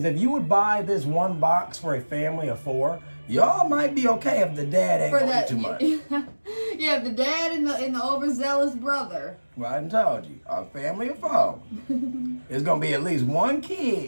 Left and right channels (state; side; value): inverted; both; correlation -1.00